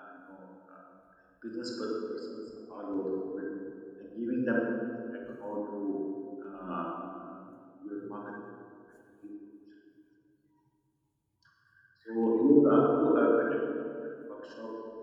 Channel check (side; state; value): both; identical; correlation 1.00